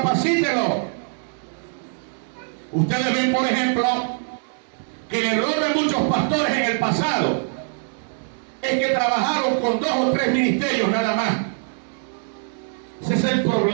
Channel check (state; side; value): silent; left; digital silence